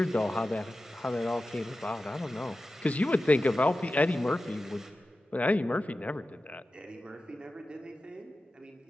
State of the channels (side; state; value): both; normal; correlation 0.94